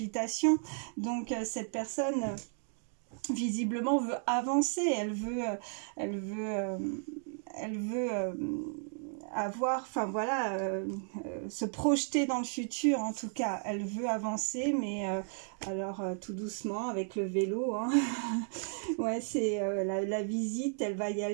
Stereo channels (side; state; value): left; silent; 55 dB below the other